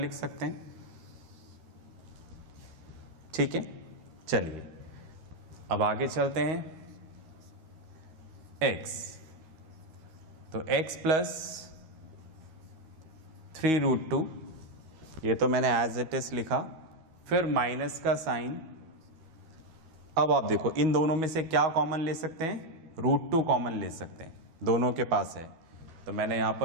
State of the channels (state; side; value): late; left; 13 ms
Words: सकते हैं, ठीक है। चलिए, अब आगे चलते हैं, x, तो x + 3√2, ये तो मैंने एज इट इज लिखा, फिर माइनस का साइन। अब आप देखो, इन दोनों में से क्या कॉमन ले सकते हैं, √2 कॉमन ले सकते हैं, दोनों के पास है, तो मैंने यहां